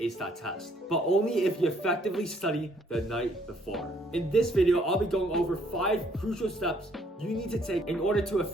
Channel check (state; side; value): normal; both; correlation 0.66